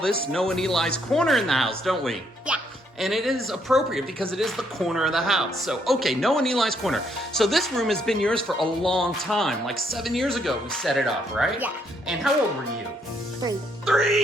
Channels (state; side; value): normal; both; correlation 0.72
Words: Noah and Eli's Corner in the house, don't we? Yeah. And it is appropriate because it is the corner of the house. So, okay, Noah and Eli's Corner. So this room has been yours for a long time. Like 7 years ago we set it up, right? Yeah. And how old were you? 3.